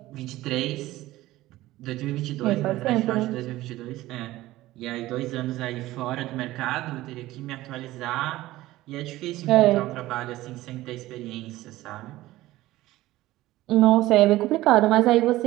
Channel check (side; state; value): left; quieter; 16.8 dB